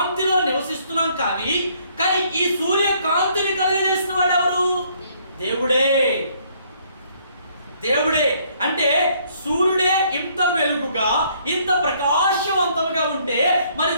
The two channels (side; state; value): both; inverted; correlation -0.65